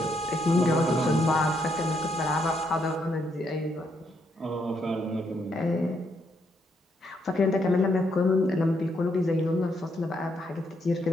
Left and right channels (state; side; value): normal; both; correlation 0.76